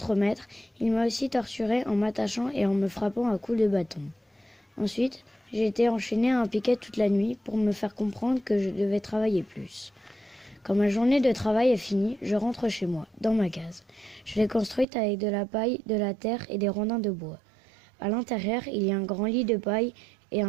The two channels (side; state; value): left; drops out; at 14.9 s